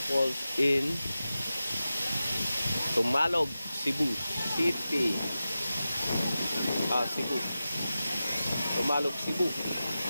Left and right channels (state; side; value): inverted; both; correlation -0.93